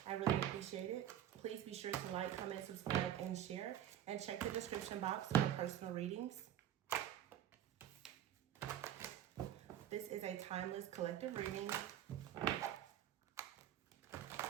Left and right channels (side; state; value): left; quieter; 11.1 dB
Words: I really appreciate it. Please be sure to like, comment, subscribe, and share. And check the description box for personal readings. This is a timeless collective reading.